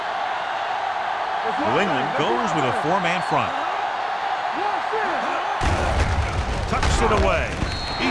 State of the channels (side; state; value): both; identical; correlation 1.00